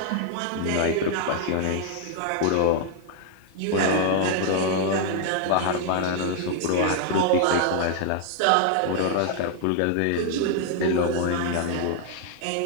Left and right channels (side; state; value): both; different; correlation 0.00